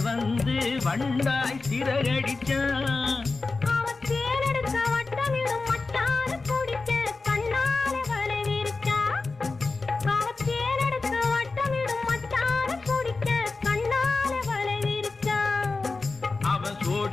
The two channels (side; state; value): right; quieter; 3.8 dB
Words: வந்து வண்டாய் சிறகடிச்சான். அவன் தேனெடுக்க வட்டமிடும் மட்டார குடிக்க கண்ணாலே வலை விரிச்சா. அவன் தேனெடுக்க வட்டமிடும் மட்டார குடிக்க கண்ணாலே வலை விரிச்சா. அவன்